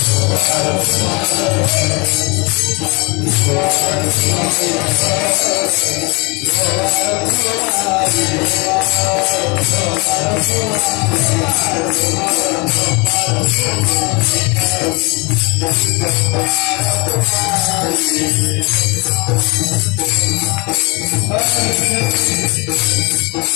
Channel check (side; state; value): right; quieter; 28.7 dB